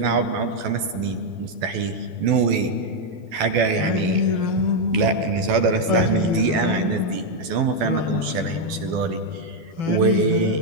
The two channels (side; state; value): left; late; 13 ms